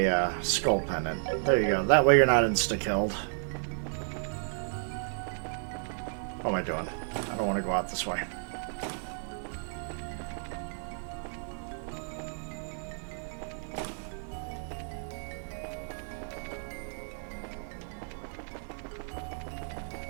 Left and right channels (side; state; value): left; silent; 56 dB below the other